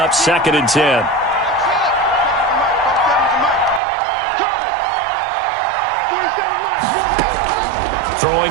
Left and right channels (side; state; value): left; drops out; at 3.8 s